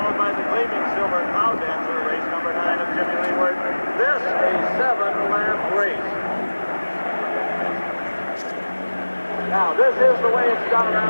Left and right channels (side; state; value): both; inverted; correlation -1.00